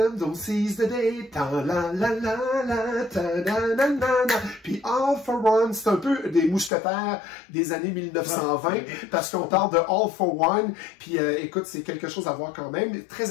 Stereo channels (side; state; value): right; drops out; at 6.7 s